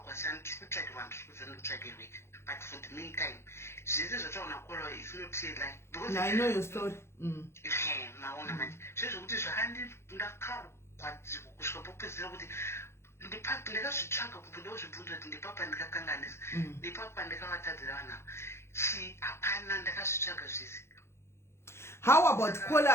saka ndiri kutsvaka vanhu ndiri kuziva ndikutsvakirwe. But for the meantime, Jesus is trying to call her. It's not say like because I know your story. Maona manje. Zvizvo kuti zvahandi ndakaro kwadziko kusvika popedzera kuti ndipapa ndakazvitsvaga kubva zvibvunzo kuti ndipapa ndikakanganisa ndipapa ndikavatadzira vanhu hapana ndakazvitsvaga zvese. How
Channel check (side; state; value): right; late; 0.13 ms